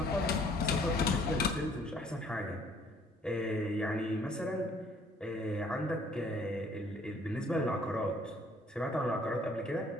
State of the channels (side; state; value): both; normal; correlation 0.60